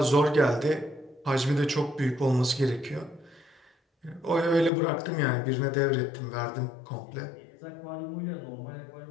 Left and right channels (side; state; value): right; drops out; at 4.7 s